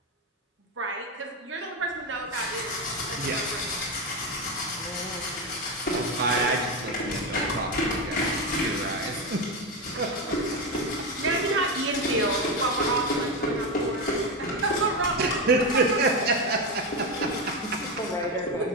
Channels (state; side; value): normal; both; correlation 0.13